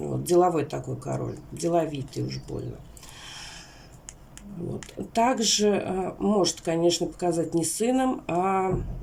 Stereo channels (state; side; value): identical; both; correlation 1.00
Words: деловой такой король, деловитый уж больно. Вот. Также может, конечно, показать не сыном, а